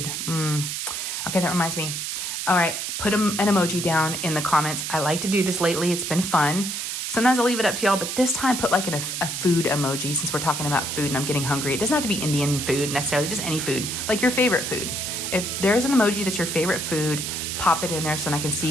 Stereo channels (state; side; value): noise; right; hiss, 4 dB below the sound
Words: okay, that reminds me. All right, put an emoji down in the comments. I like to do this lately. It's been fun. Sometimes I'll leave it up to y'all, but this time put like a food emoji, since we're talking about food and I'm getting hungry. It doesn't have to be Indian food necessarily, just any food, like your favorite food. If there's an emoji that's your favorite food, pop it in there so then I can